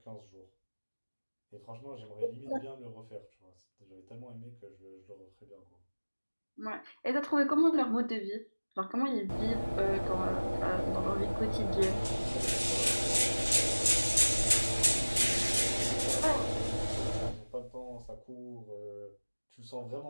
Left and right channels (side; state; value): both; inverted; correlation -1.00